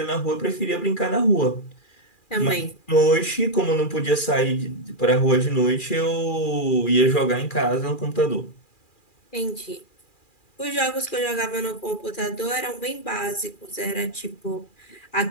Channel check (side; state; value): right; late; 2.4 ms